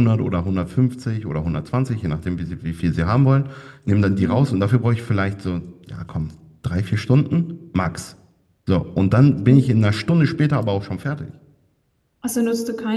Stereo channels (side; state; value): both; identical; correlation 1.00